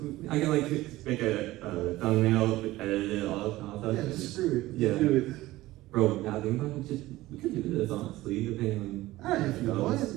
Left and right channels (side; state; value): left; quieter; 17.4 dB